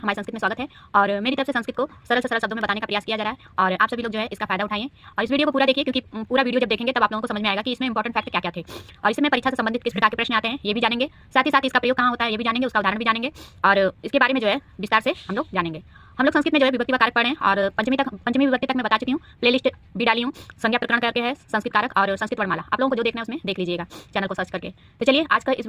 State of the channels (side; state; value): both; identical; correlation 1.00